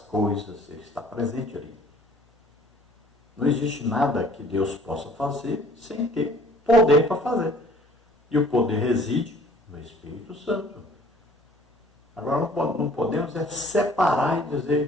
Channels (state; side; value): normal; both; correlation 0.53